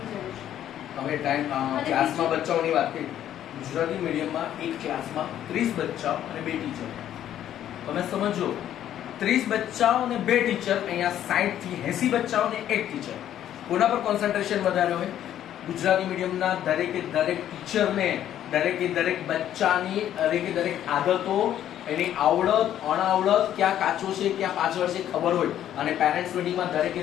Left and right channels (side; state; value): right; quieter; 11.2 dB